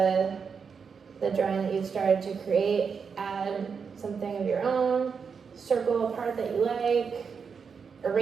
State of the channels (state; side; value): quieter; left; 6.0 dB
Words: the drawing that you've started to create. Add something of your own, circle a part that you like,